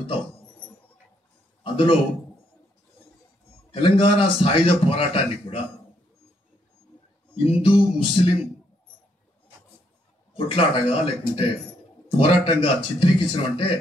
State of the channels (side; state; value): both; normal; correlation 0.73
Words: అందులో తెలంగాణ సాయుధ పోరాటాన్ని కూడా హిందూ ముస్లిం కొట్లాటగా లేకుంటే పోరాటంగా చిత్రీకరించడం అంటే